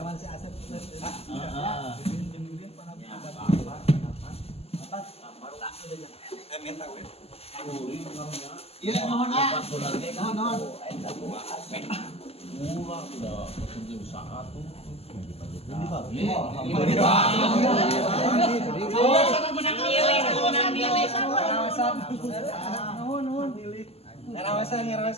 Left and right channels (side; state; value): right; late; 0.29 ms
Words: Iya, mohon ah. Mohon. Murah udah petunjuk usaha tuh.